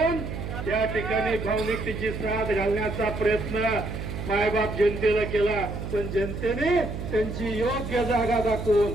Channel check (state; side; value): noise; right; hum, 6 dB below the sound